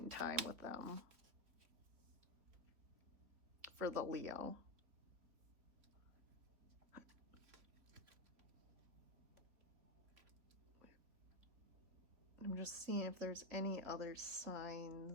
in time with them. For the Leo. I'm just seeing if there's any other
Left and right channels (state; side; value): late; left; 3.4 ms